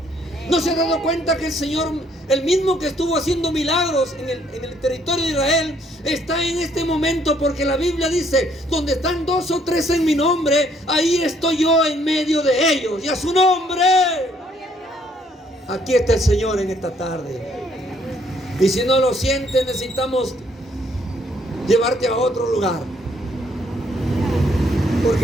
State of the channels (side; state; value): both; normal; correlation 0.67